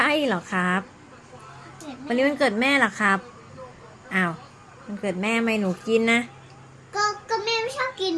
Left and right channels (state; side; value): identical; both; correlation 1.00